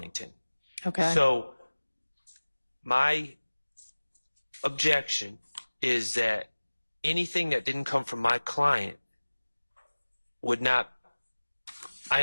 Okay. So my objection is that anything that didn't come from my client would not. I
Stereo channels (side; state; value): both; inverted; correlation -1.00